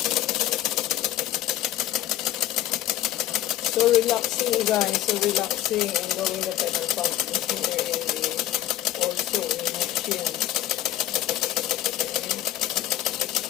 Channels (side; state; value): right; quieter; 13.2 dB